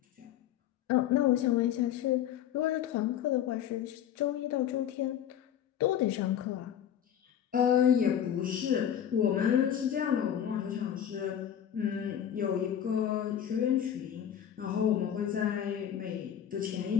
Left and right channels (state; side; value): quieter; right; 9.8 dB